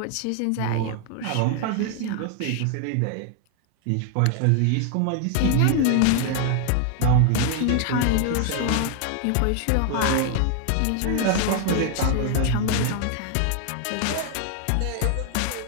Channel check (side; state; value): both; different; correlation 0.00